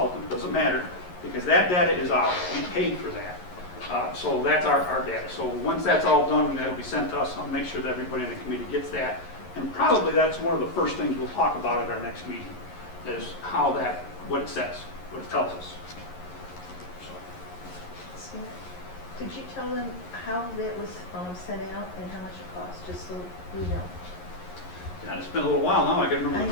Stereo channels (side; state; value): right; late; 11 ms